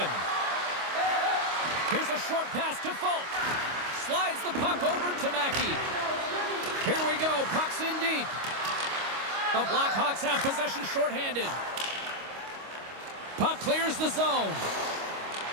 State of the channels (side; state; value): left; late; 25 ms